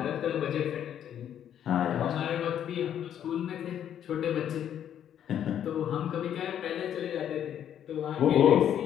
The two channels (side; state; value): right; quieter; 9.9 dB